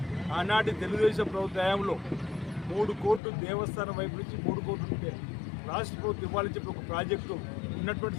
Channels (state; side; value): drops out; right; at 3.2 s